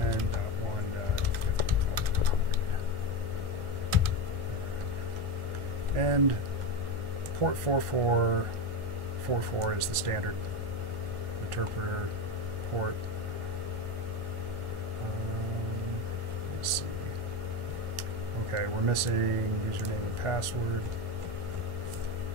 10.1.50. And port 4444 is the standard interpreter port. Let's see. Okay, we're missing username and password.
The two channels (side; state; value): left; late; 1.4 ms